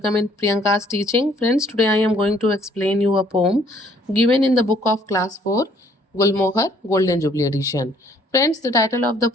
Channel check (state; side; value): normal; both; correlation 0.62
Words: in Priyanka's teaching. Friends, today I am going to explain you a poem given in the book of class 4, Gulmohar Golden Jubilee edition. Friends, the title of the